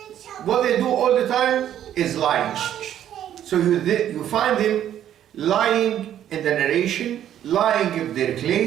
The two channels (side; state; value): left; quieter; 10.8 dB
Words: What they do all the time is lying. So you find them lying in the narration, lying in their